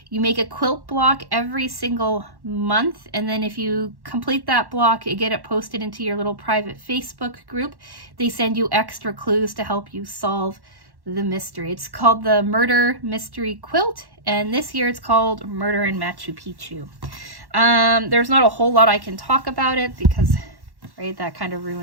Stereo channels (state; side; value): late; left; 1.1 ms